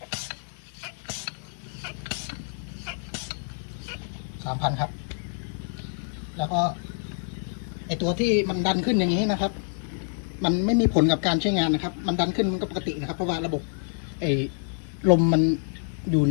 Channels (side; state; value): right; silent; digital silence